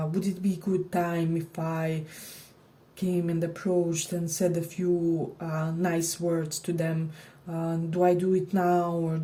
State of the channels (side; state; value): both; identical; correlation 1.00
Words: it be a good time if I came and approached and said a few nice words to them. Do I do it now, or